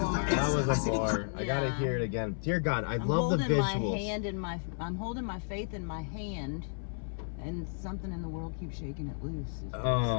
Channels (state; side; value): silent; right; 56 dB below the other